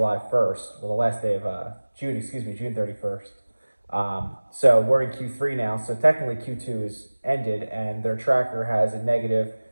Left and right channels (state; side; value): inverted; both; correlation -1.00